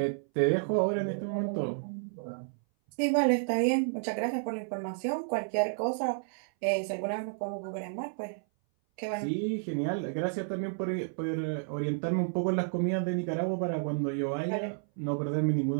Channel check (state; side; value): silent; left; 57 dB below the other